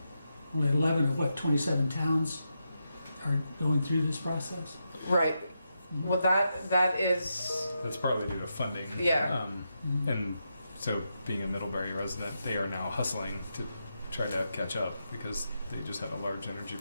11 of 27 towns are going through this process. Right. Well, that is. That's partly due to funding. Yeah. And so, being a Middlebury resident, they are now hustling to try to catch up because they just had a large energy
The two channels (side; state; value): both; inverted; correlation -0.85